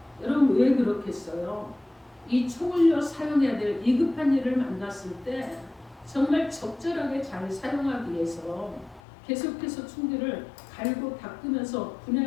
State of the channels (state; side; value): drops out; right; at 9.0 s